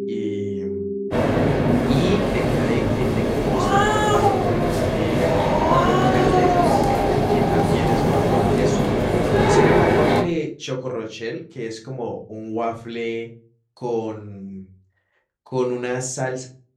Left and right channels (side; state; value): both; identical; correlation 1.00